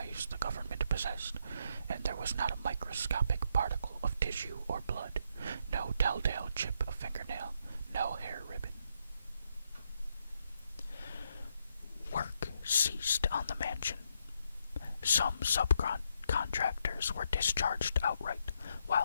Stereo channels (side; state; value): both; inverted; correlation -0.76